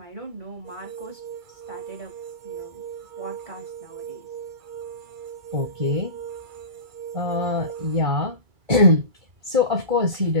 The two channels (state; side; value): late; left; 2.3 ms